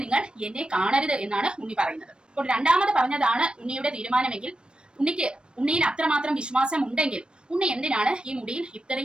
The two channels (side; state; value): left; late; 0.054 ms